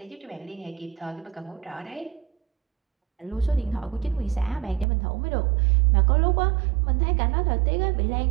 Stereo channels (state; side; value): drops out; left; at 4.9 s